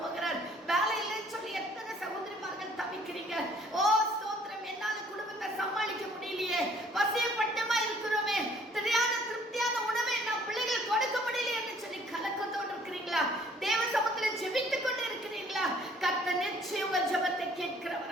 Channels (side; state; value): both; normal; correlation 0.58